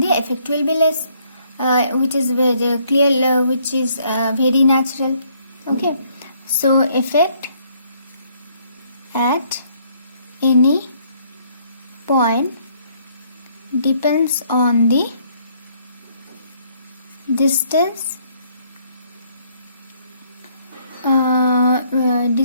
the effect will be less, which is very clear, which is very natural, okay. So effect at any point depends on the distance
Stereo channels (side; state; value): both; inverted; correlation -0.66